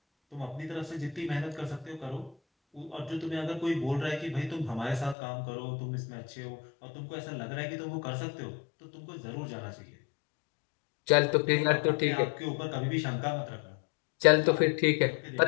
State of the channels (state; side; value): drops out; right; at 5.2 s